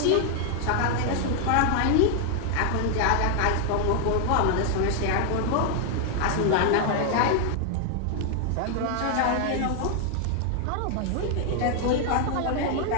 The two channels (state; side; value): different; both; correlation 0.00